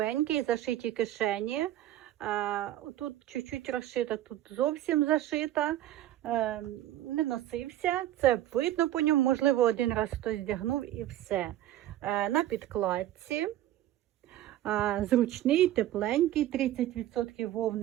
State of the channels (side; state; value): left; quieter; 13.4 dB